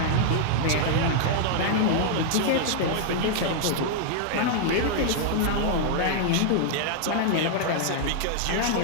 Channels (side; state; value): both; different; correlation -0.01